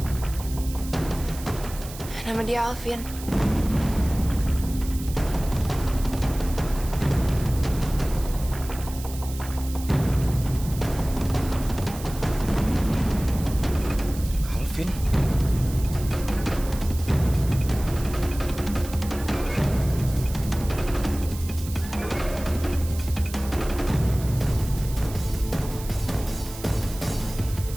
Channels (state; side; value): noise; right; hiss, 14 dB below the sound